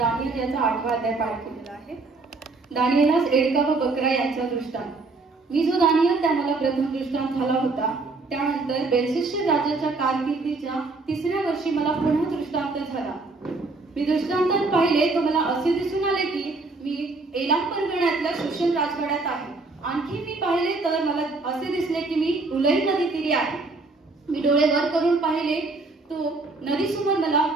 याचा 8वा अध्याय पाठ केलेला आहे. दानियलास एडका व बकरा यांचा दृष्टांत. मी जो दानियल त्या मला प्रथम दृष्टांत झाला होता, त्यानंतर बेलशस्सर राजाच्या कारकिर्दीच्या 3ऱ्या वर्षी मला पुन्हा दृष्टांत झाला. मी दृष्टांतात पाहिले तो मला असे दिसून आले की मी एलाम परगण्यातल्या शोषण राजवाड्यात आहे. आणखी मी पाहिले तर मला असे दिसले की मी उलई नदी तीरी आहे. मी डोळे वर करून पाहिले तो नदीसमोर मला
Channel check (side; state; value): left; quieter; 3.6 dB